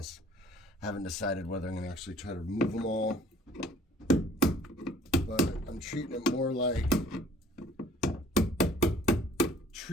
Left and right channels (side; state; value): both; normal; correlation 0.54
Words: I haven't decided whether I'm going to actually try to remove them all, but I'm treating it more like